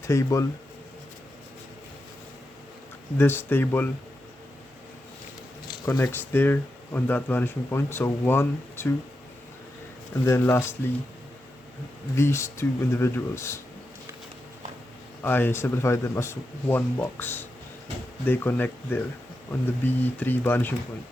connects there on that vanishing point. So 1, 2, and then lastly, these 2 individuals, I simplified them as one box. They connect there on the B3 vanishing point,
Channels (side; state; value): both; normal; correlation 0.88